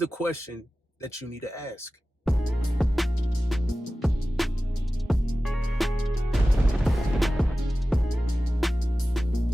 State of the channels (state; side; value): normal; both; correlation 0.95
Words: question that you need to ask.